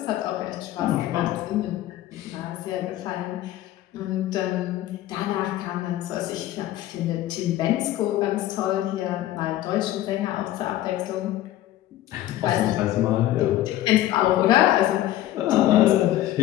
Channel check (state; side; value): quieter; right; 14.1 dB